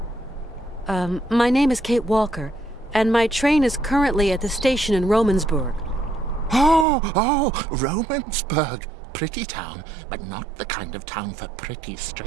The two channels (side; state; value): left; drops out; at 6.9 s